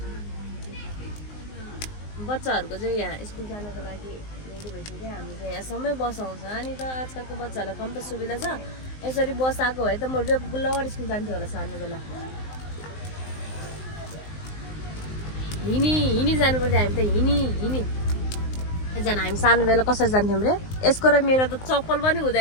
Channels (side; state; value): right; late; 19 ms